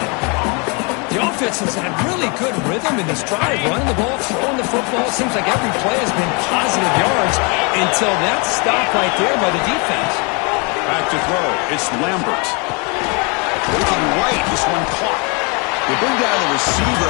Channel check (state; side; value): quieter; right; 32.4 dB